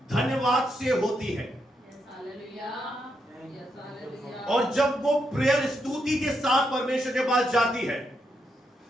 धन्यवाद से होती है। और जब वो प्रेयर स्तुति के साथ परमेश्वर के पास जाती है,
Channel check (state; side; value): normal; both; correlation 0.81